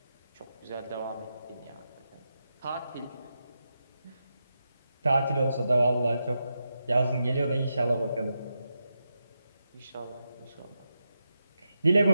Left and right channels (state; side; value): inverted; both; correlation -0.87